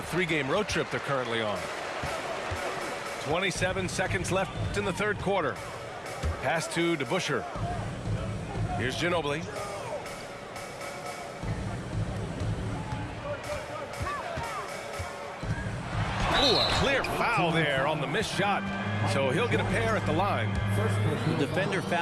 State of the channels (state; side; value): identical; both; correlation 1.00